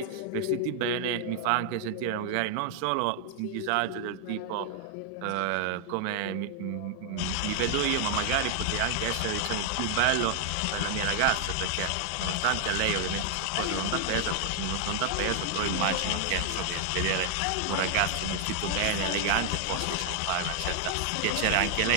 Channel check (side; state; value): both; different; correlation 0.00